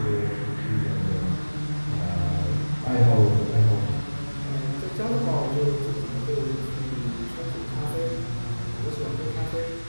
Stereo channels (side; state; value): both; inverted; correlation -1.00